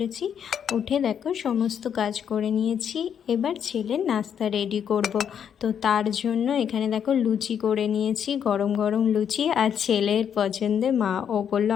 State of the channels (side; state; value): right; quieter; 8.3 dB